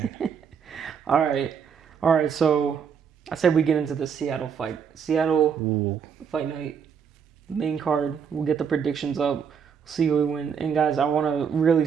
All right, so I said we get into the Seattle fight. Seattle fight night, main card. We'll get the predictions up. See who we win. And guys, I want to really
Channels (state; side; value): quieter; left; 7.1 dB